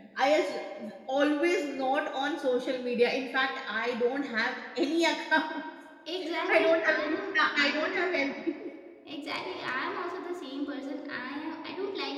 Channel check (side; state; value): both; identical; correlation 1.00